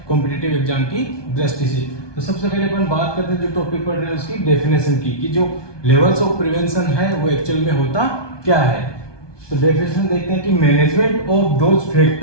कॉम्पिटिटिव एग्जाम की दृष्टि से। तो सबसे पहले अपन बात करते हैं जो टॉपिक पढ़ रहे हैं उसकी डेफिनेशन की कि जो लेवल्स ऑफ प्रिवेंशन है वो एक्चुअल में होता क्या है। तो डेफिनेशन देखते हैं कि management of those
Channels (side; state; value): right; late; 1.2 ms